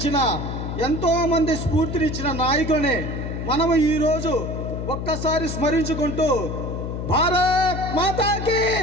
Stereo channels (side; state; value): left; noise; hum, 5 dB below the sound